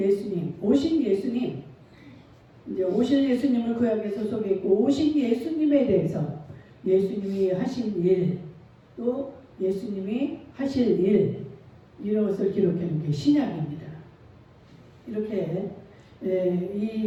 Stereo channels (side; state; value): both; identical; correlation 1.00